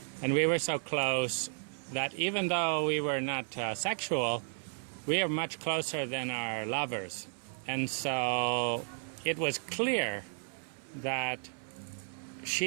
and we were so close that even though we were not sexual, we are much closer than our lovers. And so it was clear that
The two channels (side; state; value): left; silent; 55 dB below the other